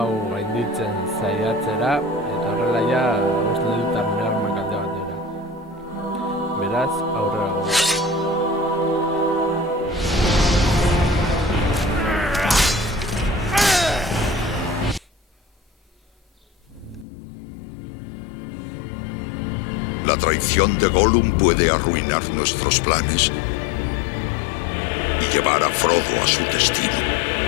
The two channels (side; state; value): right; drops out; at 17.1 s